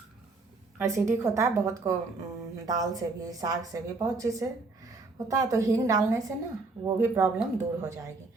एसिडिक होता है बहुत को। दाल से भी, साग से भी, बहुत चीज़ से होता है। तो हींग डालने से ना वो भी प्रॉब्लम दूर हो जाएगी।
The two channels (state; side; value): quieter; left; 3.7 dB